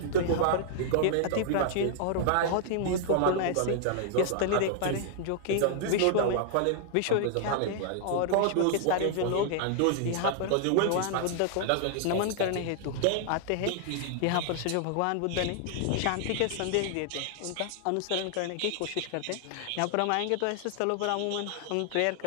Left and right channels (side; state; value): both; different; correlation 0.00